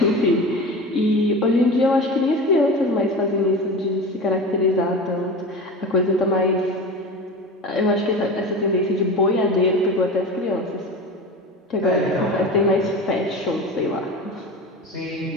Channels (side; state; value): both; normal; correlation 0.30